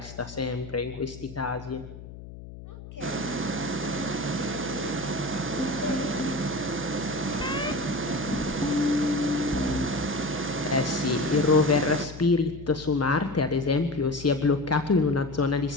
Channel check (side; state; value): left; noise; hum, 14 dB below the sound